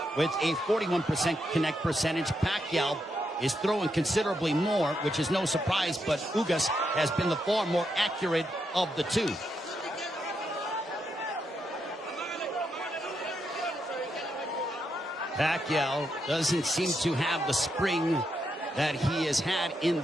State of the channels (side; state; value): both; normal; correlation 0.82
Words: with a 41% connect percentage. Pacquiao is throwing considerably more, which is no surprise, but Ugas has been the far more accurate of the two. Pacquiao doesn't seem to have the spring that he has had in